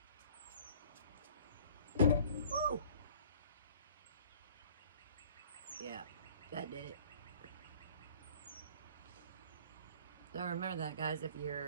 to. Woo! Yeah, that did it. So remember that, guys, if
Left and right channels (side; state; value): both; inverted; correlation -0.50